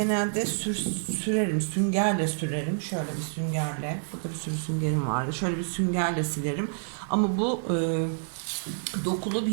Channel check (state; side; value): silent; left; 59 dB below the other